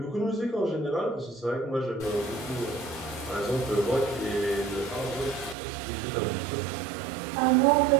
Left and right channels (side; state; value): left; drops out; at 5.6 s